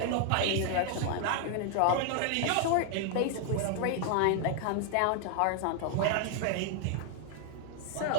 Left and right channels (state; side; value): different; both; correlation 0.00